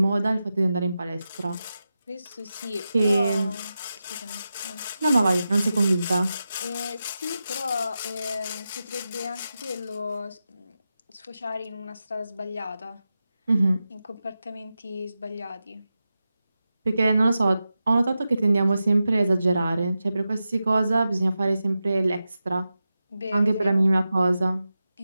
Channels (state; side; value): inverted; both; correlation -0.92